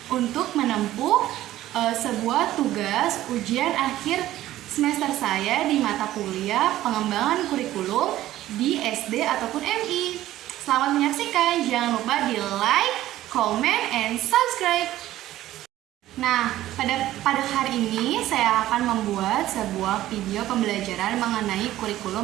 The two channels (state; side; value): quieter; left; 14.4 dB